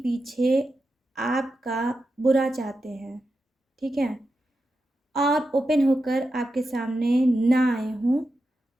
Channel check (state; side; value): normal; both; correlation 0.89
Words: पीछे आपका बुरा चाहते हैं, ठीक है, और ओपन होकर आपके सामने ना आए हों